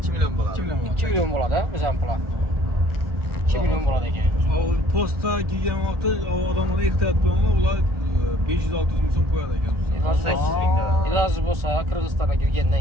milyon bo'ladi. 2 milyon bo'ladi, bizning pul. 2 milyon bo'ladi ekan. O posta kelgan vaqtda odamlar ehtiyot bo'linglar, ular 500-600 ming so'm qo'yadi ekan. 18 bin lira. Iloji bo'lsa Qirg'izistonga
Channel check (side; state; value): left; late; 1.4 ms